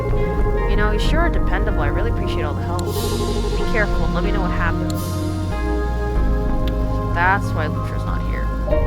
You know, you sure are dependable. I really appreciate all the help. Be careful and let me know what happens. That's why Lutra's not here.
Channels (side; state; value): both; identical; correlation 1.00